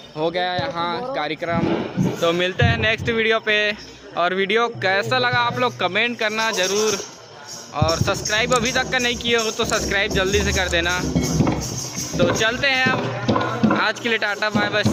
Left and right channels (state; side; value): identical; both; correlation 1.00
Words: हो गया यहाँ कार्यक्रम। तो मिलते हैं नेक्स्ट वीडियो पे। और वीडियो कैसा लगा आप लोग कमेंट करना ज़रूर। और सब्सक्राइब अभी तक का नहीं किए हो तो सब्सक्राइब जल्दी से कर देना। तो चलते हैं अब। आज के लिए tata bye bye,